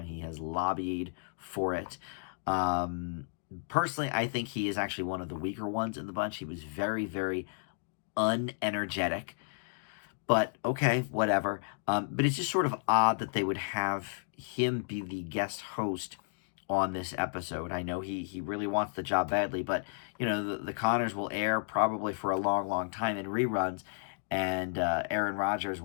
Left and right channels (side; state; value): right; silent; digital silence